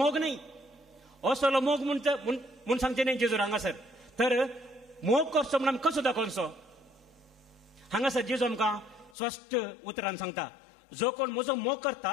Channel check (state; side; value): drops out; right; at 9.2 s